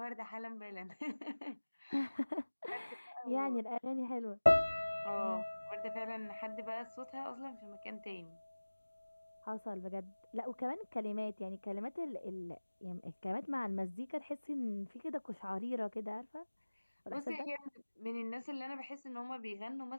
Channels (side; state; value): both; inverted; correlation -1.00